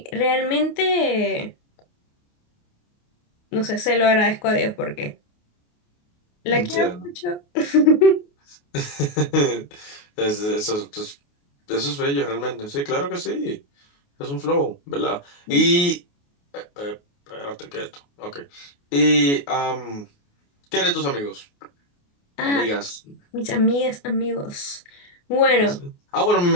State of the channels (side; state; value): right; late; 28 ms